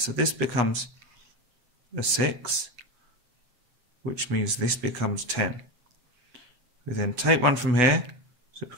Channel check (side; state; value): left; late; 8.1 ms